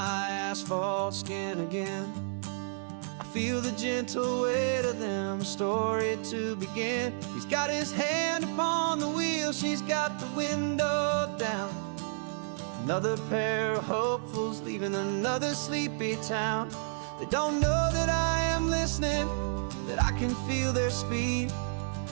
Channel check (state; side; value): silent; left; 57 dB below the other